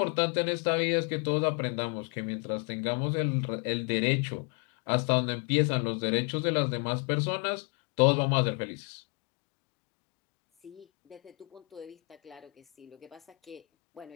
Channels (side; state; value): right; quieter; 30.3 dB